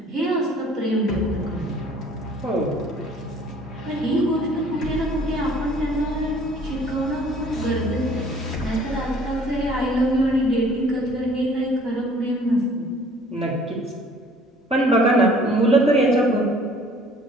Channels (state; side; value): normal; both; correlation 0.55